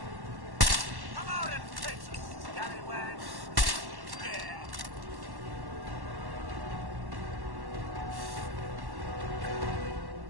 Come out and face us, scallywag. Yeah.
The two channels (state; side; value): late; left; 1.1 ms